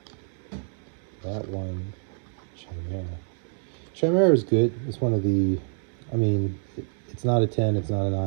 That one, Chimera. Chimera is good. It's one of the, I mean, it's not a 10, it's not a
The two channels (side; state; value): left; silent; digital silence